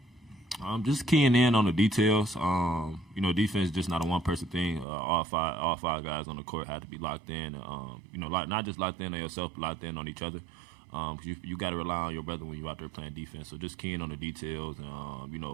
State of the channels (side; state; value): left; drops out; at 4.9 s